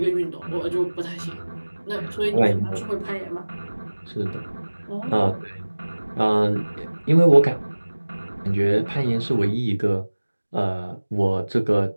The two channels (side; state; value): both; inverted; correlation -1.00